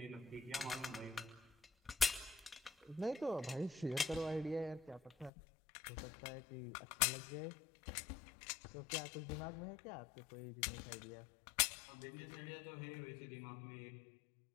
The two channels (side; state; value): right; drops out; at 5.3 s